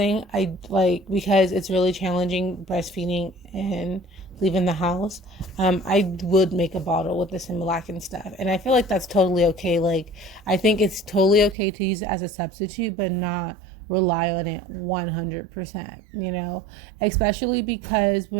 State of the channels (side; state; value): left; drops out; at 11.6 s